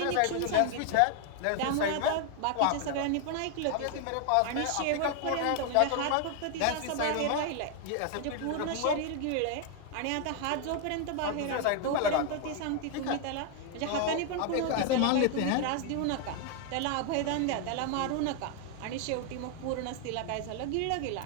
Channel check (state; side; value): different; both; correlation 0.00